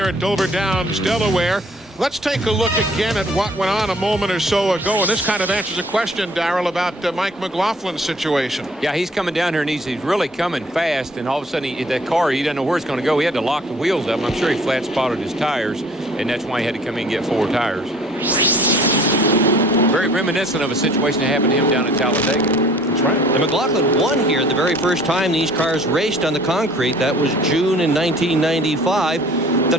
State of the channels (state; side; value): normal; both; correlation 0.53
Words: at Dover Downs, Delaware. Let's take a look again at what went on a moment or so ago, and this kind of answers a question, Darrell, about Mike McLaughlin's situation. Yeah, he's coming down here, and he's really coming fast, and all of a sudden, that car, he doesn't know where it's going to go. He had to lock the wheels up. I'm sure he flat spotted his tires, and that's why he had to come in and get 4 tires. Very reminiscent of a situation that happened to him down at Talladega. That's right. And McLaughlin won here the very first time these cars raced on the concrete. That was June in 1995. The